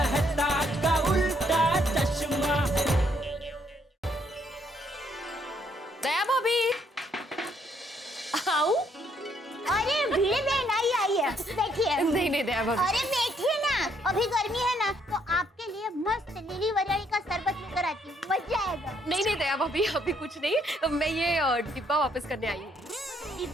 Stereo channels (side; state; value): both; normal; correlation 0.70